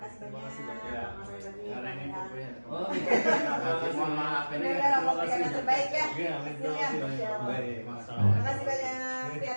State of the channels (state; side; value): inverted; both; correlation -1.00